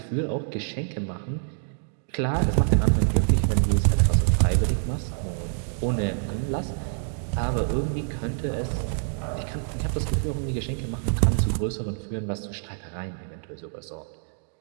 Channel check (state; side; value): silent; left; digital silence